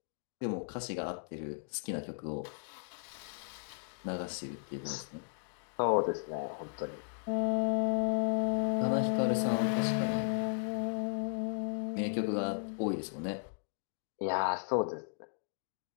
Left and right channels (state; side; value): silent; right; digital silence